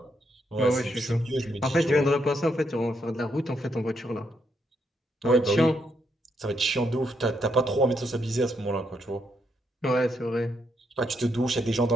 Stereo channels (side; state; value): both; normal; correlation 0.78